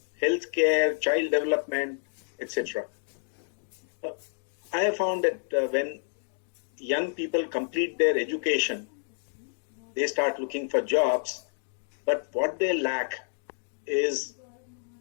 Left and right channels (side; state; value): right; silent; digital silence